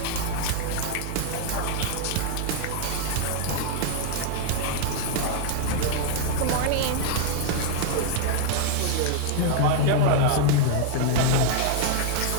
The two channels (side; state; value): both; different; correlation 0.00